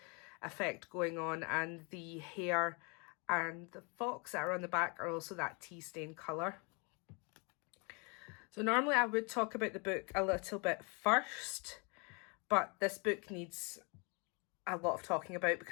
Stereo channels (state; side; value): quieter; right; 32.7 dB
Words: effect going on, and the hair and the fox that are on the back are also that tea stain colour. So normally I would talk about the book a little bit first, but this book needs a lot of talking about